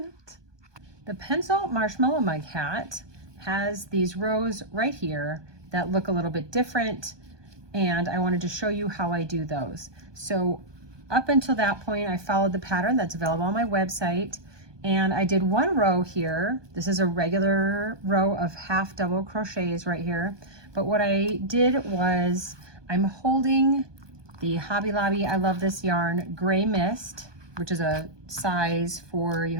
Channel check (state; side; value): late; left; 1.2 ms